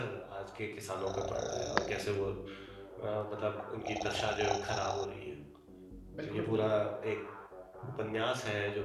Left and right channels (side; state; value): both; identical; correlation 1.00